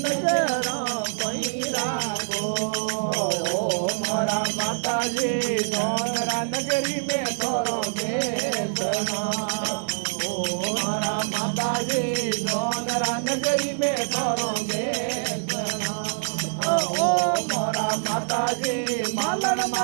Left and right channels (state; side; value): silent; left; 62 dB below the other